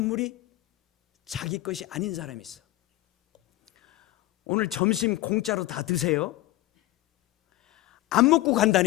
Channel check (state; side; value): quieter; right; 17.4 dB